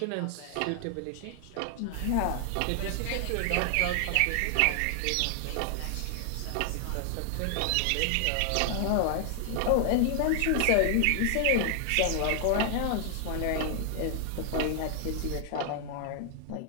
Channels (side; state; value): both; different; correlation 0.00